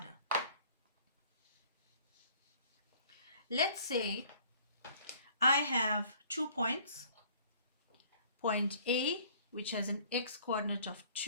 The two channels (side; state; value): both; inverted; correlation -0.55